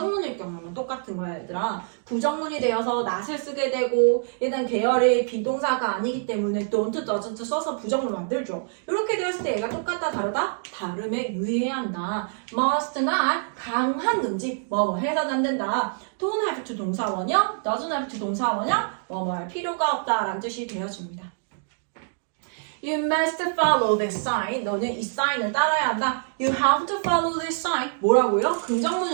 경우는 똑같은 거야, 얘들아. 부정문이 되어서 not을 쓰게 되고 얘는 계열의 비동사가 아니기 때문에 don't, doesn't 써서 부정문 만들죠. 이렇게 되었을 때 얘가 똑같다, 다르다? 다름에 유의해야 한다. must not 강한 금지, 뭐 해서는 안 된다. don't have to 동사원형, doesn't have to 동사원형, 뭐 할 필요가 없다라는 뜻이 되어집니다. You must follow this sign. 너는 이 사인을 따라야 한다. You have to follow this sign. 뭐라고요?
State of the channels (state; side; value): silent; left; digital silence